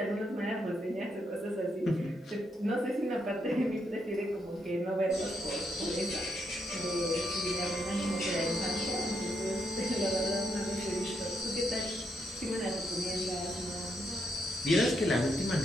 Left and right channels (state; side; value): normal; both; correlation 0.79